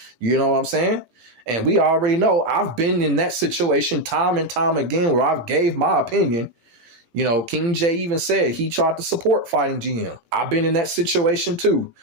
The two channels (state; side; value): late; left; 18 ms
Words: You know what I'm saying? And we already know I've been in that situation time and time again where I've gave my opinion. King Jae even said he tried to support FightingGM. I've been in that situation too,